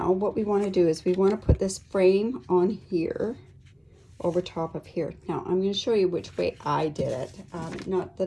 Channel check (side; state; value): both; identical; correlation 1.00